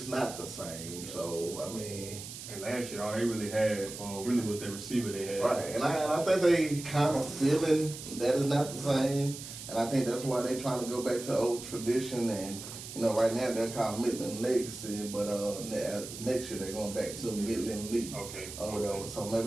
not the same. So I mean. And last year, all they really had really was their receiver they had. Right, and I think they kind of feeling that is not the same, and I think that's why they're trying to go back to old tradition and. Right now they're called Midland Legacy, but next year they're going back to Midland League. Okay. Or whatever. So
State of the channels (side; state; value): right; noise; hiss, 11 dB below the sound